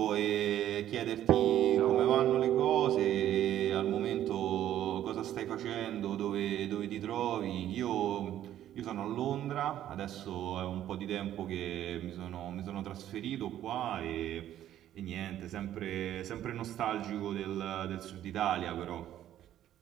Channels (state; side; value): quieter; left; 11.9 dB